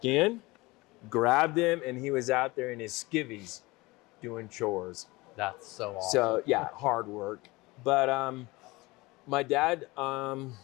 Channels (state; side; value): quieter; right; 22.2 dB